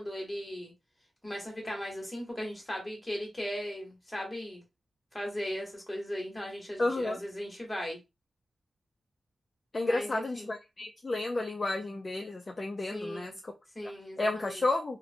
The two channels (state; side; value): normal; both; correlation 0.95